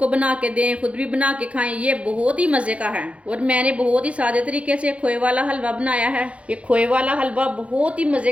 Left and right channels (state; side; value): late; left; 0.063 ms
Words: बना के दें, खुद भी बना के खाएं। ये बहुत ही मज़े का है और मैंने बहुत ही सादे तरीके से खोए वाला हलवा बनाया है। ये खोए वाला हलवा बहुत ही मज़े